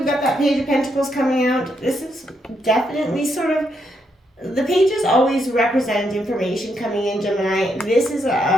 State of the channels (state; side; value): normal; both; correlation 0.79